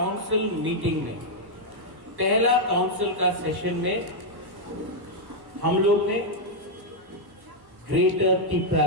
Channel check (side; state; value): left; late; 1.1 ms